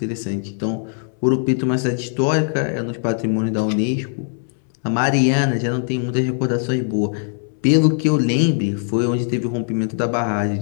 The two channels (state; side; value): silent; right; 65 dB below the other